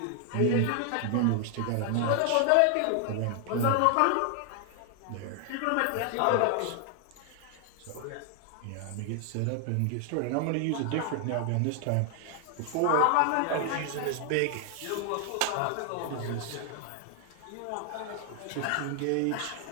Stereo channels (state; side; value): different; both; correlation 0.00